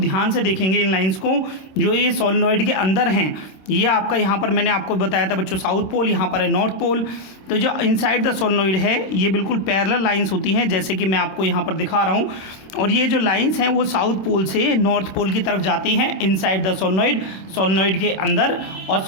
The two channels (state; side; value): late; right; 26 ms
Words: से देखेंगे इन लाइंस को जो ये सोलेनॉइड के अंदर हैं। ये आपका यहाँ पर मैंने आपको बताया था बच्चों साउथ पोल, यहाँ पर है नॉर्थ पोल। तो जो इनसाइड द सोलेनॉइड है ये बिल्कुल पैरेलल लाइंस होती हैं, जैसे कि मैं आपको यहाँ पर दिखा रहा हूँ। और ये जो लाइंस हैं वो साउथ पोल से नॉर्थ पोल की तरफ जाती हैं इनसाइड द सोलेनॉइड के अंदर, और